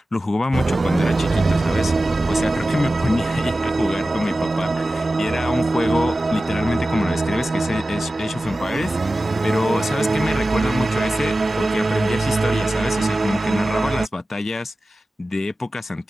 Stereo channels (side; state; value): both; normal; correlation 0.95